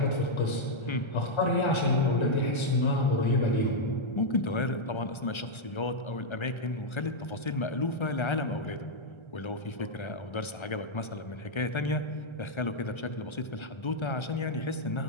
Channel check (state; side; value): late; right; 1.3 ms